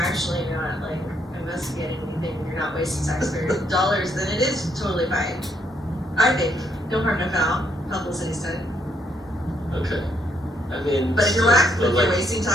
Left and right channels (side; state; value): both; normal; correlation 0.73